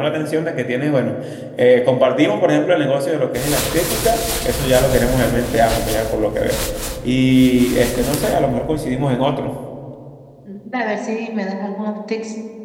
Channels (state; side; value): identical; both; correlation 1.00